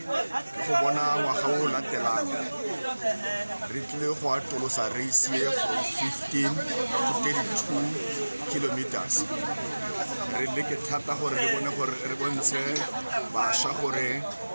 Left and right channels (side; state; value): both; inverted; correlation -1.00